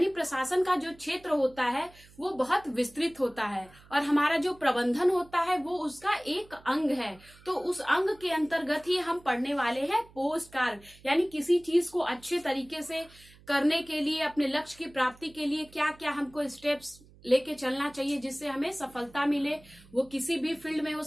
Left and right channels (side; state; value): right; noise; hum, 25 dB below the sound